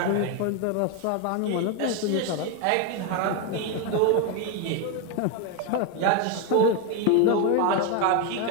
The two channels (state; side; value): different; both; correlation 0.02